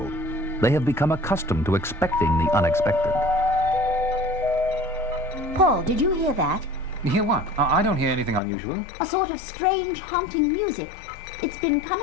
They have become accustomed to expecting the unexpected. Paul, did you hear that? You hear what? I don't hear anything unusual. A sort of strange, haunting music. It's been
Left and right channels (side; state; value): right; drops out; at 8.4 s